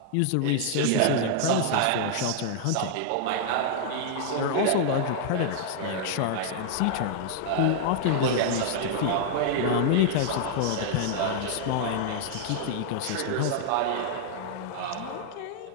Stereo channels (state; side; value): different; both; correlation -0.01